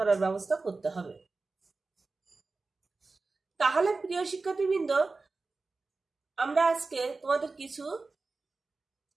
ব্যবস্থা করতে হবে। তাহলে প্রিয় শিক্ষার্থীবৃন্দ, আমরা আজকে তোমাদের কিছু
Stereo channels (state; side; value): quieter; left; 3.8 dB